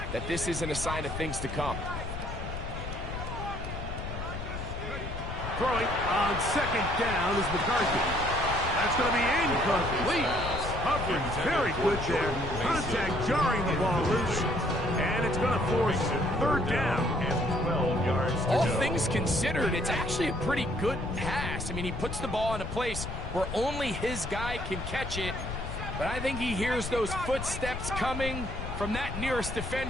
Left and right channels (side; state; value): left; noise; rumble, 6 dB below the sound